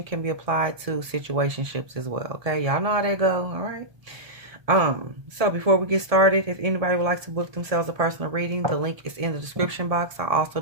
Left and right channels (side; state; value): left; late; 1.7 ms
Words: can be applied to situationships as well. Okay. Y'all know how they go. All right. So before we get started, if anybody would like to book themselves a personal reading, the link is in the description box. I also